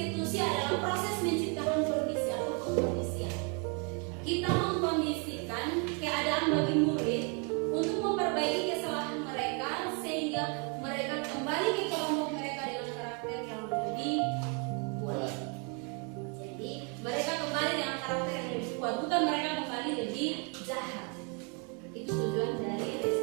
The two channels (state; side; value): quieter; left; 36.0 dB